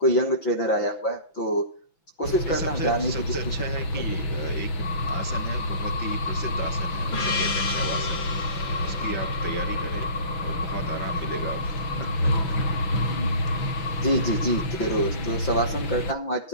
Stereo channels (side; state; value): right; late; 5.9 ms